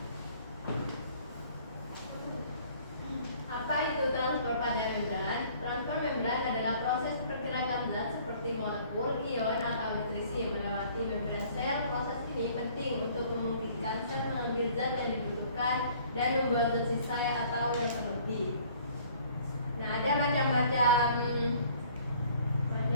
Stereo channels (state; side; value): inverted; both; correlation -0.55